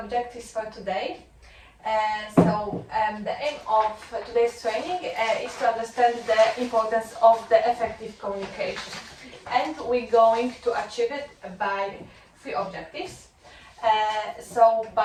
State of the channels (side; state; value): both; identical; correlation 1.00